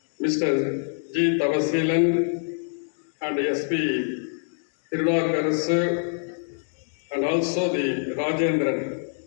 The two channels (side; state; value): right; silent; digital silence